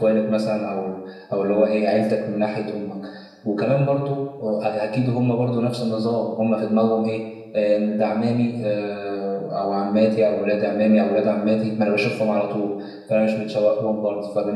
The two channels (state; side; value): identical; both; correlation 1.00